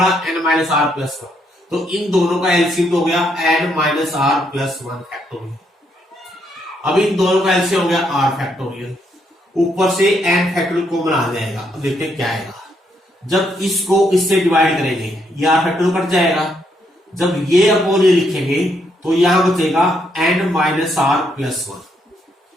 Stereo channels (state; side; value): normal; both; correlation 0.75